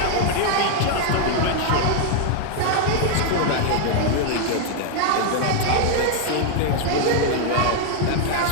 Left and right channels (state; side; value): different; both; correlation 0.00